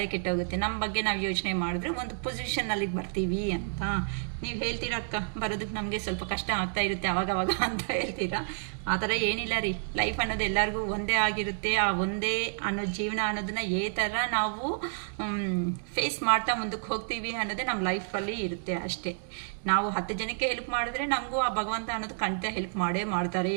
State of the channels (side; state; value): left; silent; digital silence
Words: ಕೆಟ್ಟೋಗುತ್ತೆ. ನಮ್ಮ ಬಗ್ಗೆ ನಾವು ಯೋಚನೆ ಮಾಡಿದ್ರೆ ಒಂದು ಪೊಸಿಷನ್ನಲ್ಲಿ ಬರ್ತೀವಿ ಅಂತ ನೀವು ಹೇಳ್ತೀರಾ ಅಕ್ಕ. ಬರೋದಕ್ಕೆ ನಮಗೆ ಸ್ವಲ್ಪ ಕಷ್ಟ ಆಗ್ತಾ ಇರುತ್ತೆ ಅವಾಗವಾಗ ಅಂತ ಹೇಳ್ತೀರಾ. ಆ ಥರ ಏನಿಲ್ಲ ರೀ. ಲೈಫ್ ಅನ್ನೋದು ಎಲ್ಲರಿಗೂ ಒಂದೇ ಆಗಿರುತ್ತೆ. ಆ ಒಂದೇ ಅನ್ನೋ ಜೀವನ ಅನ್ನೋದನ್ನ ಥರ ನಾವು ಫೇಸ್ ಮಾಡ್ತಾ ಮುಂದಕ್ಕೆ ಹೋಗ್ತೀವಿ ಅನ್ನೋದೇ ನಮ್ಮ ಲೈಫಲ್ಲಿ ಇರುತ್ತೆ ಅಷ್ಟೇ. ನಾವು 10 ಜನಕ್ಕೆ ಹೆಲ್ಪ್ ಮಾಡಿದ್ರೆ ನಮಗೂ ಆ ಭಗವಂತ ಅನ್ನೋದು ಖಂಡಿತ ಹೆಲ್ಪ್ ಮಾಡೇ ಮಾಡ್ತಾರೆ